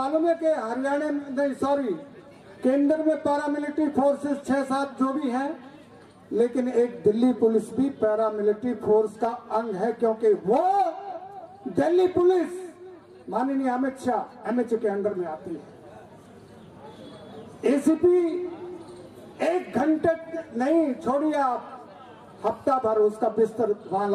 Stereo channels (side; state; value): both; identical; correlation 1.00